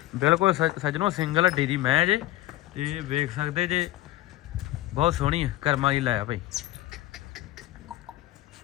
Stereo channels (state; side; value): quieter; right; 16.0 dB